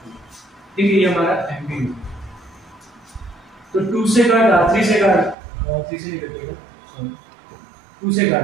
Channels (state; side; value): drops out; left; at 5.4 s